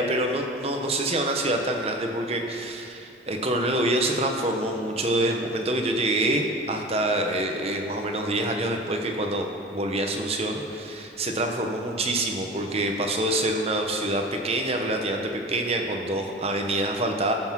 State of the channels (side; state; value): both; normal; correlation 0.35